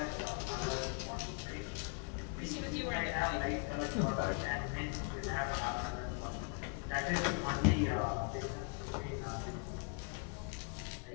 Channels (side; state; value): right; quieter; 38.2 dB